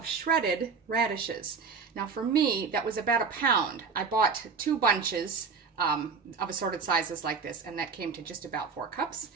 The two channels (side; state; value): left; quieter; 5.3 dB